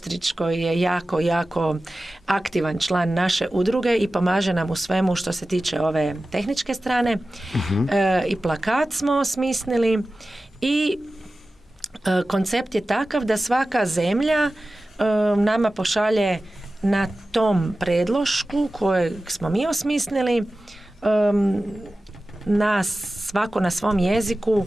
koji je jako, jako aktivan član naše udruge i pomaže nam u svemu što se tiče ove tehničke strane. I plakat smo osmislili i koncept je takav da svaka zemlja nama pošalje na tom predlošku kojeg smo mi osmislili svako na svom jeziku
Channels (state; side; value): normal; both; correlation 0.95